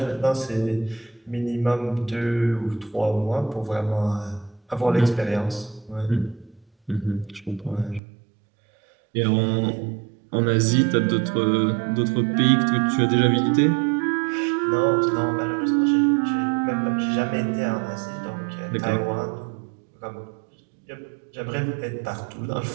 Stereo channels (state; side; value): drops out; left; at 8.0 s